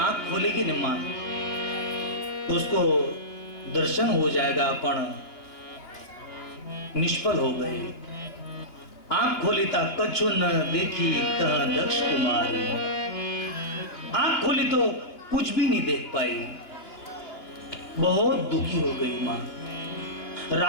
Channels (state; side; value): late; right; 2.9 ms